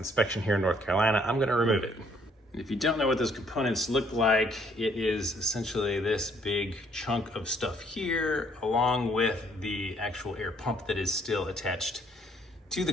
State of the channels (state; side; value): normal; both; correlation 0.65